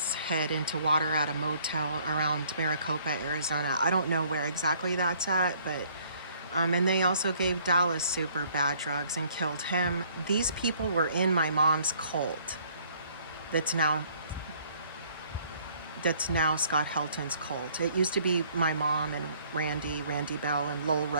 head into water at a motel around Maricopa, Arizona. I don't know where exactly that's at, but and they also gave Dallas Super bad drugs and killed him. These people were in my mom's cult. That's now Scott Helton's cult. It used to be my mom and Randy Bell and Lowell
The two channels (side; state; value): both; inverted; correlation -0.61